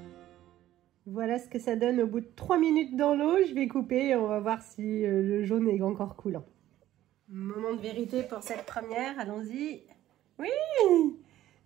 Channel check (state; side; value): quieter; left; 13.6 dB